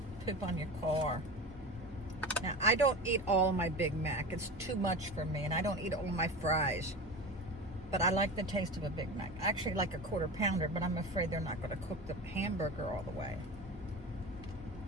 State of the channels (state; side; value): normal; both; correlation 0.29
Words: poop on your car. Now, I don't eat all of my Big Mac. It's too much for me, and I don't eat all of my fries. But I like the taste of a Big Mac. I actually like a quarter pounder, but I'm afraid they're not going to cook the hamburger all the way.